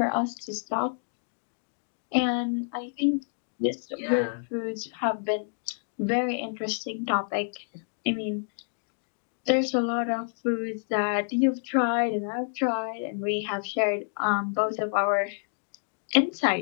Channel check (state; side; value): silent; right; 59 dB below the other